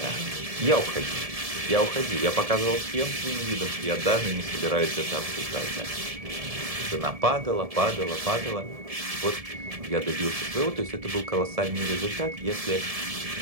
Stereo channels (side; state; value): left; late; 1.7 ms